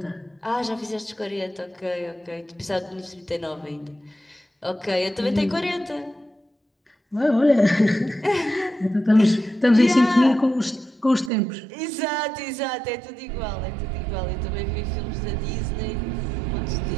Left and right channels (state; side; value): drops out; left; at 11.3 s